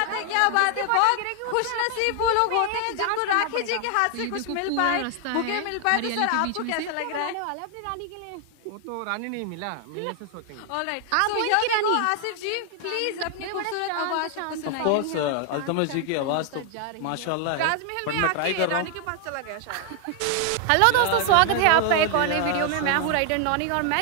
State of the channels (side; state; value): both; different; correlation 0.00